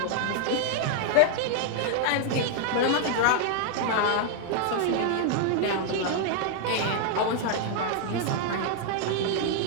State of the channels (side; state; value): both; different; correlation -0.01